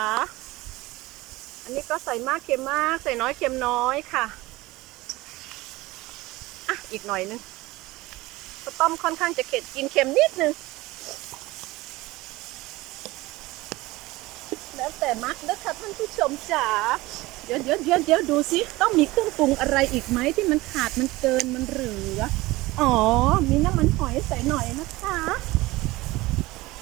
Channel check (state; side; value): quieter; left; 19.9 dB